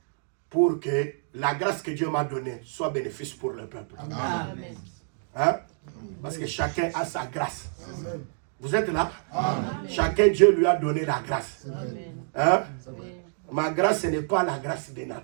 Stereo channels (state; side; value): silent; left; digital silence